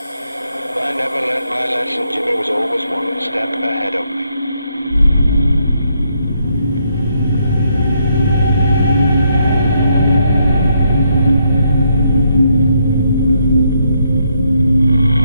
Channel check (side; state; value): both; inverted; correlation -0.75